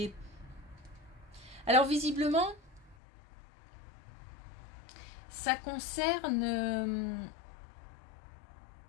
Alors visiblement, ça concerne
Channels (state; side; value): drops out; right; at 3.0 s